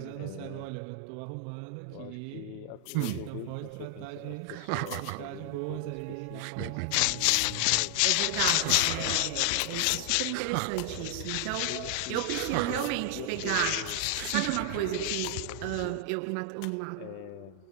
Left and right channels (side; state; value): both; different; correlation 0.00